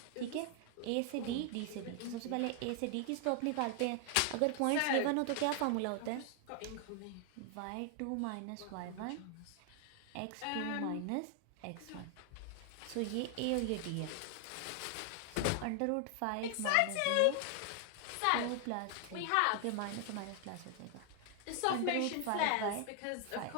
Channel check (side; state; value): both; different; correlation 0.00